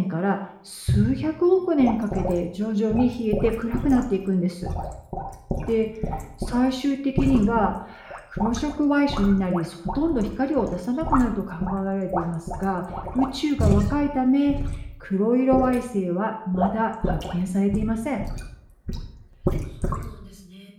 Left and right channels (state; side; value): identical; both; correlation 1.00